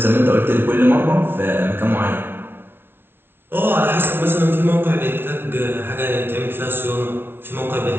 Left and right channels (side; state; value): left; late; 0.11 ms